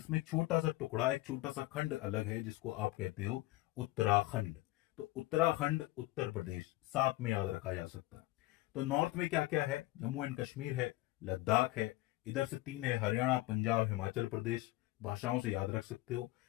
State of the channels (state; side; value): quieter; right; 18.5 dB